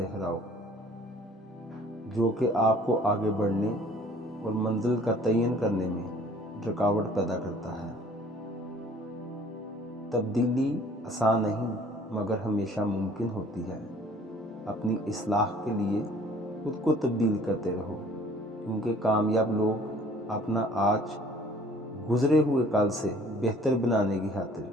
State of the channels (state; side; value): normal; both; correlation 0.53